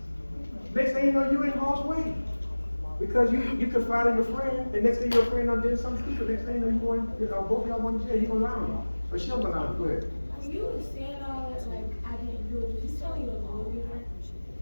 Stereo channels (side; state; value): both; inverted; correlation -1.00